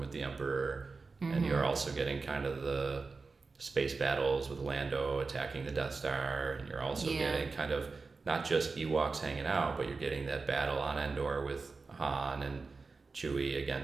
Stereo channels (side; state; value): left; quieter; 4.2 dB